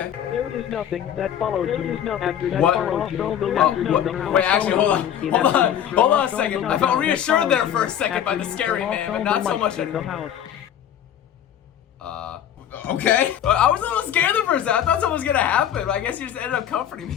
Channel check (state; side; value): quieter; right; 9.9 dB